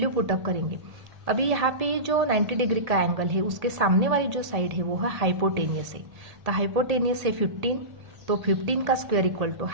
पुटअप करेंगे। अभी यहाँ पे जो 90 डिग्री का एंगल है उसके सामने वाली जो साइड है वो है हाइपोटेनियस है। तो हाइपोटेनियस है 15, तो 15 का स्क्वायर इक्वल टू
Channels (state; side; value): late; left; 1.8 ms